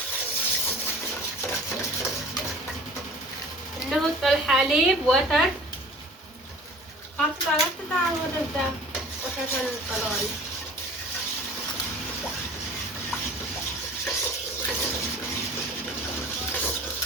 نحط الحليب وتر قطع ودجا وتر القلوي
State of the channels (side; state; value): both; normal; correlation 0.45